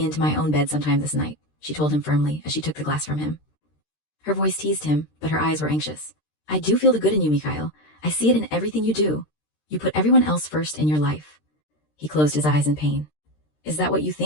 to my own bed sometime this night, she told him firmly as she took the glass from him. Her voice teased him, but her eyes were anxious. I do feel the good in you, Mikhail. I see it in everything you do. You put everyone else first in your life. He closed his eyes in pain. Is that what you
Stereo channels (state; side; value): late; right; 13 ms